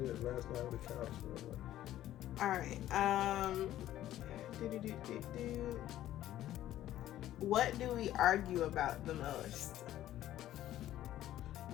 last night on the couch. All right. What do we argue about the most?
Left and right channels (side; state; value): right; quieter; 13.2 dB